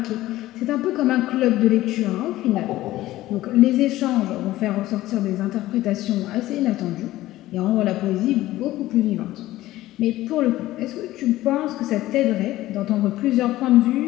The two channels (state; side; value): quieter; right; 15.9 dB